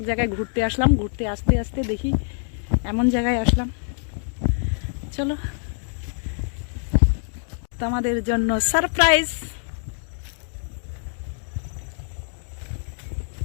জায়গায় ঘুরতে আসলাম। ঘুরতে আসতে আসতে দেখি এমন জায়গায় আসলাম, চলো তোমাদের জন্য সারপ্রাইজ।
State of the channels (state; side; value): silent; right; digital silence